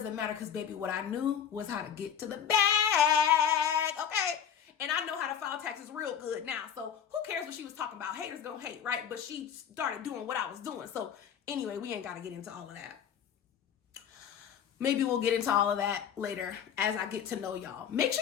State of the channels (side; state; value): right; quieter; 8.5 dB